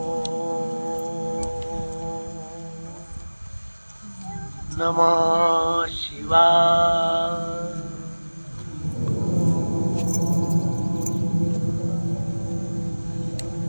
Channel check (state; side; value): inverted; both; correlation -1.00